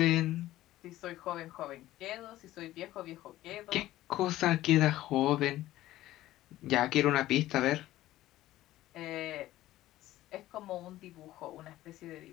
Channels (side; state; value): right; quieter; 15.2 dB